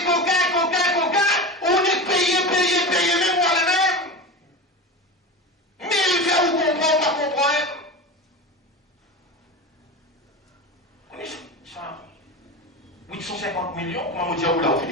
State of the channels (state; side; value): normal; both; correlation 0.26